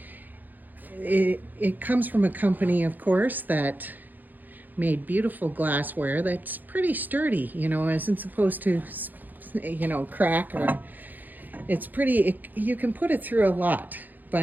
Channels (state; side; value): late; left; 0.085 ms